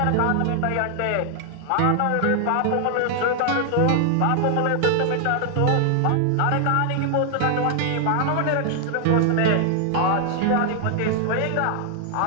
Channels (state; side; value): different; both; correlation 0.00